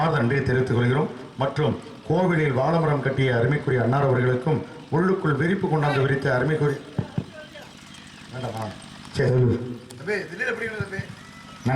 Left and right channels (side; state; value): both; identical; correlation 1.00